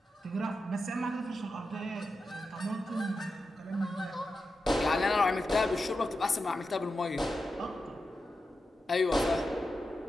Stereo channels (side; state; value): both; normal; correlation 0.90